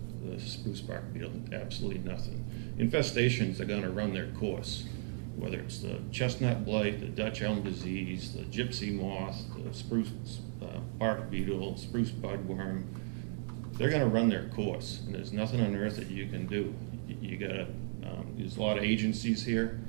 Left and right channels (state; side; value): silent; left; 54 dB below the other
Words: the spruce bark beetle? Absolutely nothing. Infestations are going to run their course, whether it's the chestnut blight, the Dutch elm disease, the gypsy moth, the spruce bark beetle, spruce budworm. They're going to run their course, and there's nothing on earth that you can do. You got to. There's a lot of agencies here,